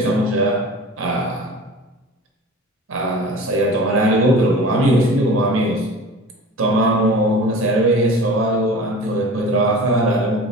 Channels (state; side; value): normal; both; correlation 0.38